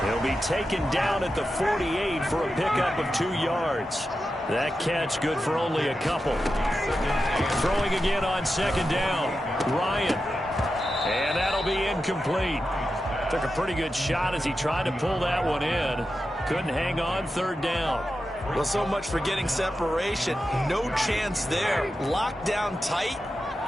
He'll be taken down at the 48 for a pickup of 2 yards. That catch good for only a couple. Throwing again on second down. Ryan. And that'll be incomplete. Took a pretty good shot as he tried to pull that one in. Couldn't hang on third down. Well, so much for getting separation. No chance there. Locked down tight,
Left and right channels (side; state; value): both; normal; correlation 0.90